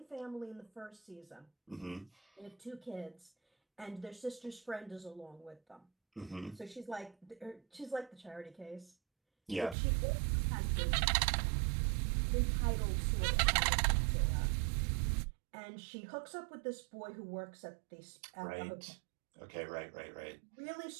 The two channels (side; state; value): left; drops out; at 9.8 s